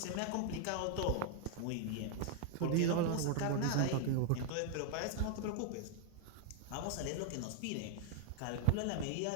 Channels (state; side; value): different; both; correlation 0.00